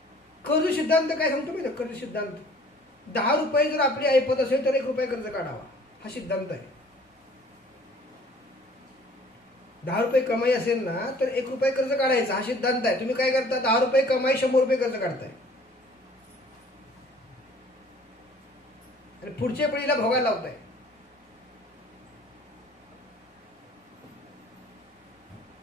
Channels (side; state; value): both; normal; correlation 0.53